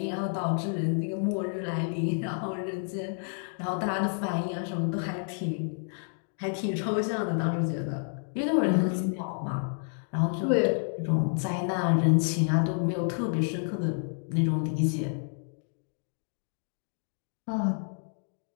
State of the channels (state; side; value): silent; right; 58 dB below the other